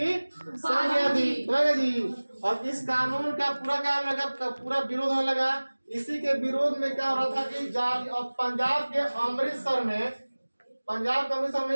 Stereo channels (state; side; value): inverted; both; correlation -1.00